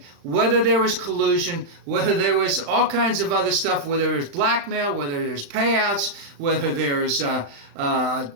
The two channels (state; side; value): late; left; 35 ms